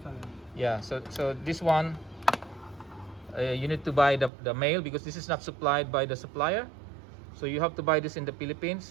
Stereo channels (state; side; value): drops out; left; at 4.3 s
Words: Yeah, so this one you need to buy the male, because this is not supplied by the supplier. So you have to buy this in the